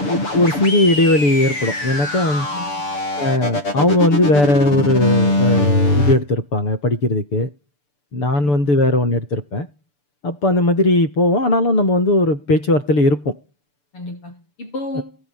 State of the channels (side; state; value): right; late; 6.9 ms